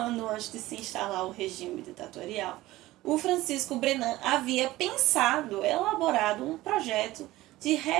antes de se instalar o regime ditatorial, o Francisco Brenan havia pensado, elaborado um projeto de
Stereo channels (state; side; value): quieter; left; 17.4 dB